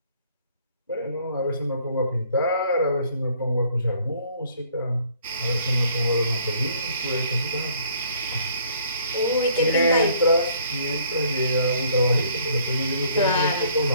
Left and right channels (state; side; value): inverted; both; correlation -0.61